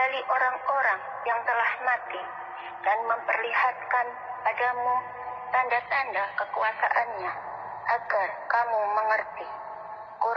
orang-orang yang telah mati dan memperlihatkan padamu tanda-tanda kekuasaannya agar kamu mengerti.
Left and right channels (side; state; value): both; identical; correlation 1.00